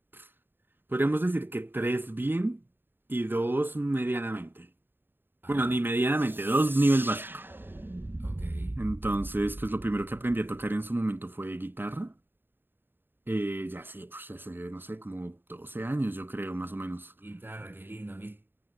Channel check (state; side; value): late; left; 0.098 ms